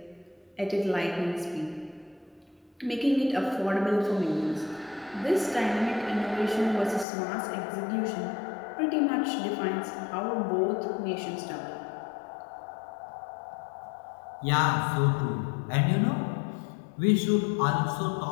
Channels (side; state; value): right; drops out; at 7.1 s